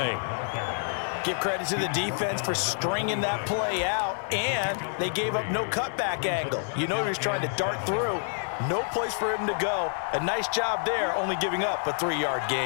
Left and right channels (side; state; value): right; silent; digital silence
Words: Give credit to the defense for stringing that play out, and they gave up no cutback angle. You know he was trying to dart through. No place for him to go. A nice job there, only giving up a 3-yard